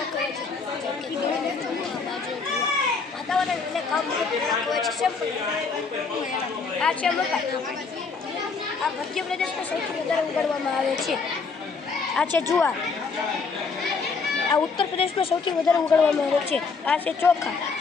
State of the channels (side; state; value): right; quieter; 4.8 dB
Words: વાતાવરણ એટલે કામ હોય છે. આ છે મકાઈ. આ મધ્યપ્રદેશમાં સૌથી વધારે ઉગાડવામાં આવે છે. આ છે જુવાર. આ ઉત્તર પ્રદેશમાં સૌથી વધારે ઉગાડવામાં આવે છે. આ છે ચોખા.